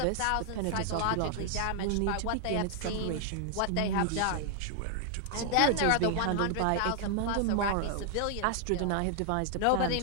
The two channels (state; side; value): different; both; correlation 0.00